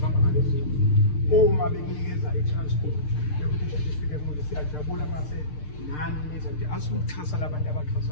ngalezi uma bekunikeza i-transport siyajabula mase nani niza nje asikuxhasa labantu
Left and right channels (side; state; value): right; late; 6.7 ms